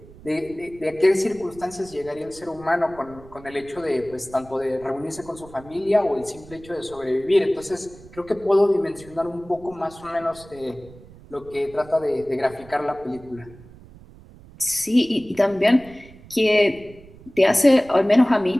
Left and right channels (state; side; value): noise; right; rumble, 21 dB below the sound